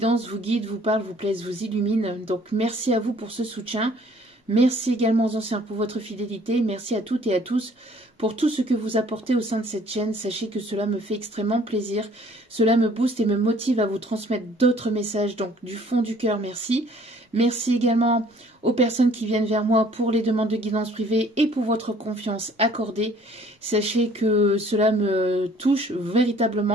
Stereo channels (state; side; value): normal; both; correlation 0.57